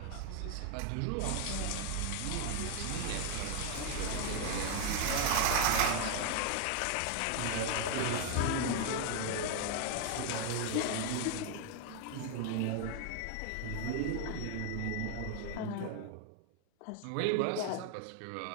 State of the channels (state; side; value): different; both; correlation 0.01